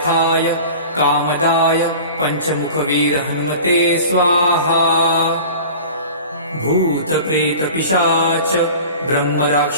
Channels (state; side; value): inverted; both; correlation -0.39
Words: कामदाय पञ्चमुखवीर हनुमते स्वाहा। भूतप्रेतपिशाच